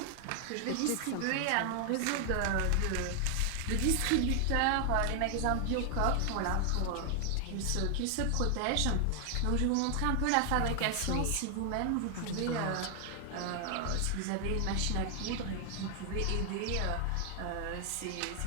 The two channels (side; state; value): both; different; correlation 0.00